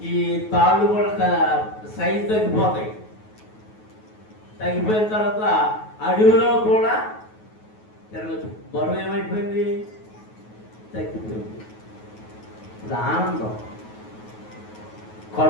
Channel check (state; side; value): late; right; 9.3 ms